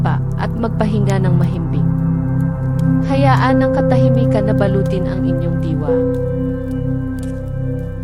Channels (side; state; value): both; identical; correlation 1.00